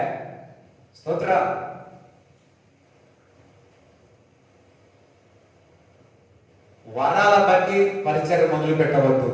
స్తోత్ర. వరాల బట్టి పరిచయం మొదలు పెట్టవద్దు.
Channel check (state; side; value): identical; both; correlation 1.00